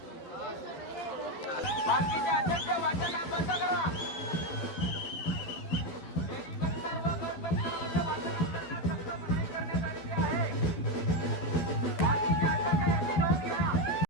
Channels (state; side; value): late; right; 12 ms